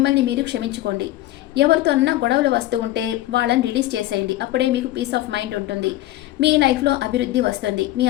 మీరు క్షమించుకోండి. ఎవరితో అన్నా గొడవలు వస్తూ ఉంటే వాళ్ళని రిలీజ్ చేసేయండి. అప్పుడే మీకు పీస్ ఆఫ్ మైండ్ ఉంటుంది. మీ లైఫ్లో అభివృద్ధి వస్తుంది. మీ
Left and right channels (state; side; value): quieter; right; 15.5 dB